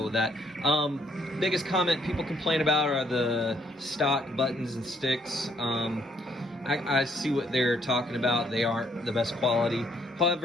with that. Biggest comment people complain about are the stock buttons and sticks. I see what they're talking about. They aren't the best quality.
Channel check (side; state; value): both; normal; correlation 0.68